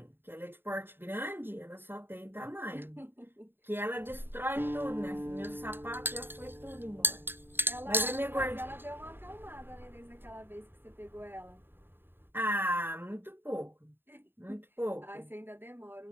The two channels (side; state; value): left; late; 0.10 ms